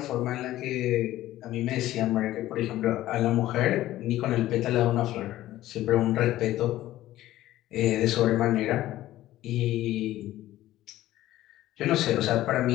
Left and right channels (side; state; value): right; quieter; 14.8 dB